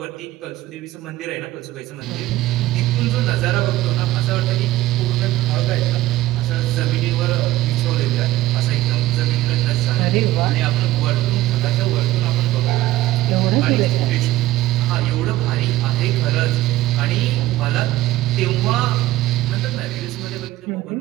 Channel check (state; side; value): quieter; left; 16.2 dB